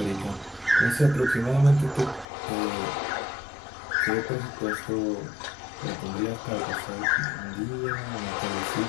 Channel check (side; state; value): right; drops out; at 2.2 s